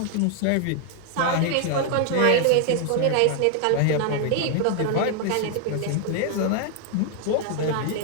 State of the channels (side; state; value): both; different; correlation 0.00